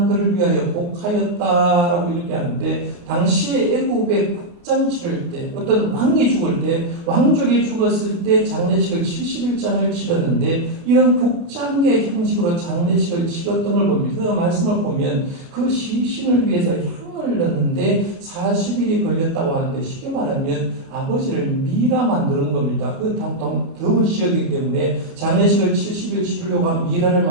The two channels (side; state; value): left; late; 29 ms